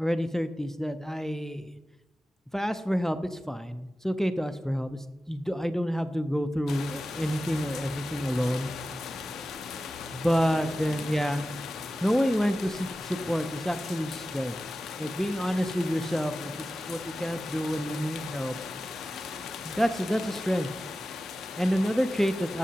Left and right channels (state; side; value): normal; both; correlation 0.94